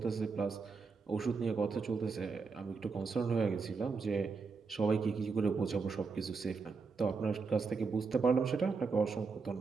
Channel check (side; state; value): left; quieter; 4.8 dB